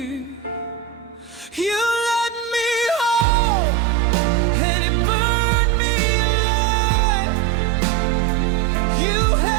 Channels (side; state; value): left; drops out; at 3.2 s